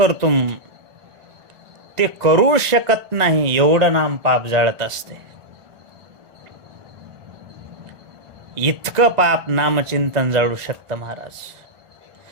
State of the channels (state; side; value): late; left; 1.5 ms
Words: ते करू शकत नाही एवढं नाम पाप जाळत असते. इतकं पाप नामचिंतन जाळू शकतं महाराज.